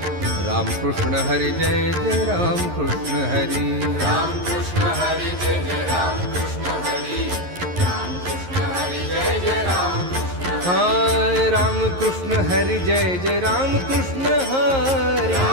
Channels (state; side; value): late; left; 11 ms